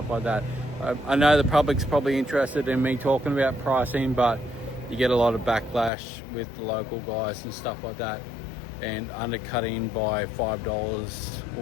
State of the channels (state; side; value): drops out; right; at 5.9 s